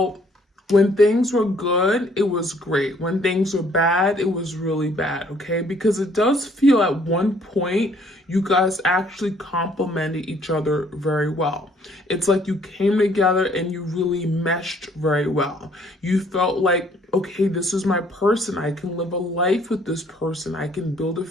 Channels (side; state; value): both; normal; correlation 0.62